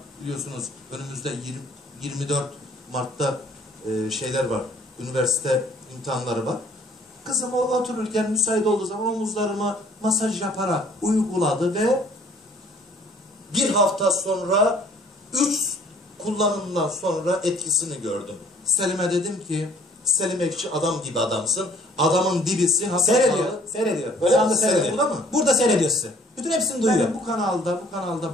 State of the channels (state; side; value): normal; both; correlation 0.57